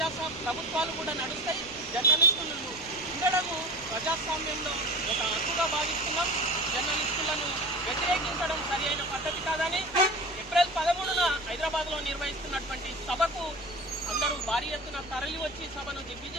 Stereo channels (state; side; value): noise; right; rumble, 20 dB below the sound